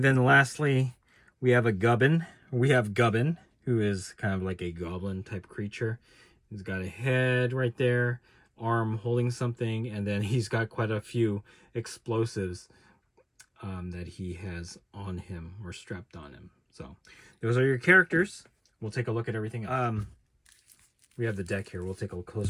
then lastly, we have Gubbin, who is kind of like a goblin type creature. He's got a head right there, arm holding something, and then he's got quite a few explosives that he has on him or strapped on him. So those are your characters. We'll take a look at everything else. We have the deck here. We'll take a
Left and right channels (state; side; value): identical; both; correlation 1.00